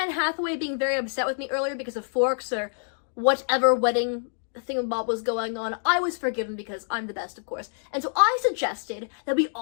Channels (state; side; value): silent; right; digital silence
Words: Hathaway being very upset with me earlier because of forks or whatever wedding thingamabob was going on, I was forgiven because I'm the best, of course. And so I suggested that we